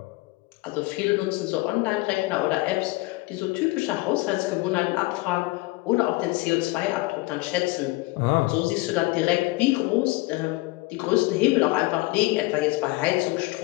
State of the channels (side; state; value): right; quieter; 22.0 dB